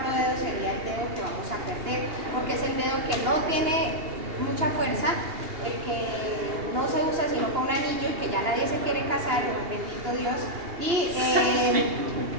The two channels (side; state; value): left; late; 2.8 ms